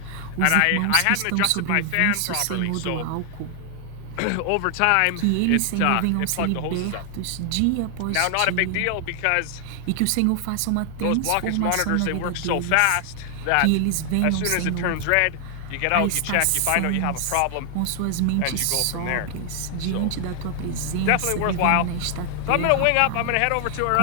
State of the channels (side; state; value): both; different; correlation 0.00